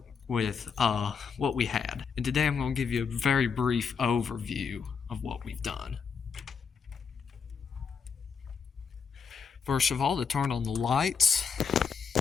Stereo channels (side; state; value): right; quieter; 5.9 dB